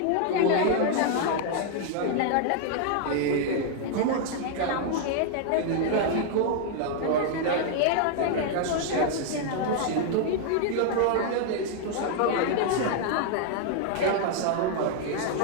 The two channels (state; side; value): different; both; correlation 0.00